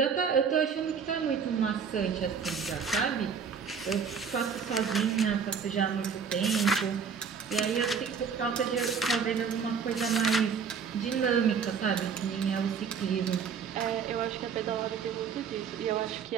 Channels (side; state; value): left; quieter; 6.3 dB